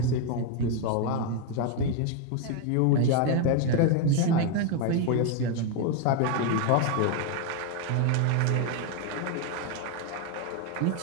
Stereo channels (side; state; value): both; different; correlation 0.01